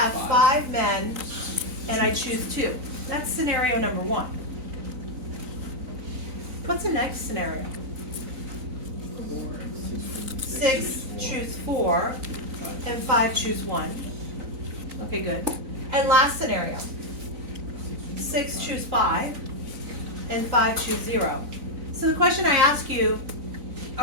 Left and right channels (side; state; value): left; late; 3.9 ms